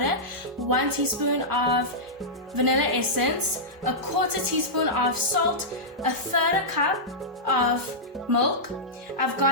1 teaspoon of vanilla essence, 1/4 teaspoon of salt, 1/3 cup of milk. I've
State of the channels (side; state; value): both; normal; correlation -0.11